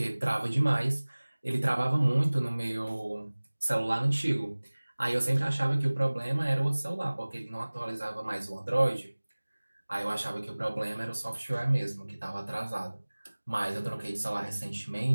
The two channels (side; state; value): both; inverted; correlation -1.00